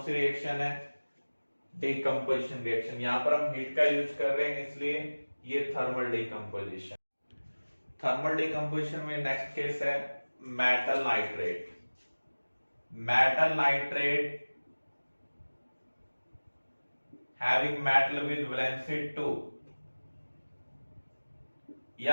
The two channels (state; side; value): inverted; both; correlation -1.00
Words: सी रिएक्शन है, डिकम्पोजिशन रिएक्शन। यहां पर हम हीट का यूज कर रहे हैं इसलिए ये थर्मल डिकम्पोजिशन। थर्मल डिकम्पोजिशन में नेक्स्ट केस है metal nitrate. Metal nitrate having metal with valency 2